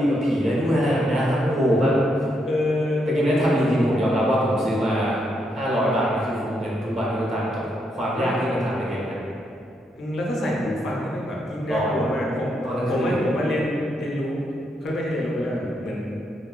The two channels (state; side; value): normal; both; correlation 0.78